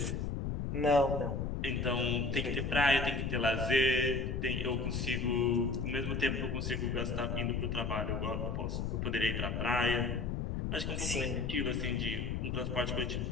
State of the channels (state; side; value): noise; left; rumble, 2 dB below the sound